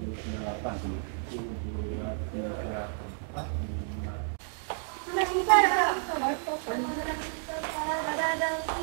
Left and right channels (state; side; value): silent; left; 57 dB below the other